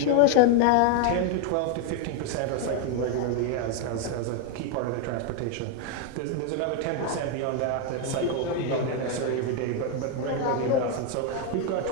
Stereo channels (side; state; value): both; different; correlation 0.01